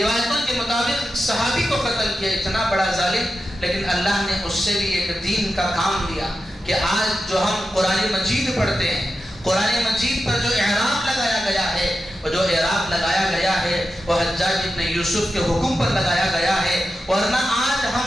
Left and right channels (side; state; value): both; normal; correlation 0.90